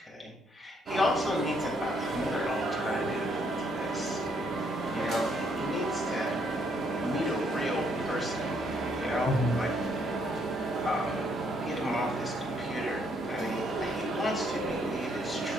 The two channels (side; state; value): both; normal; correlation 0.71